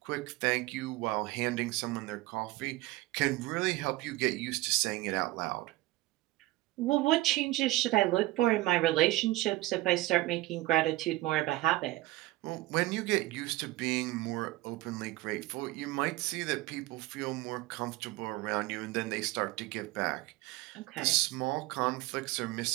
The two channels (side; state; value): left; quieter; 18.5 dB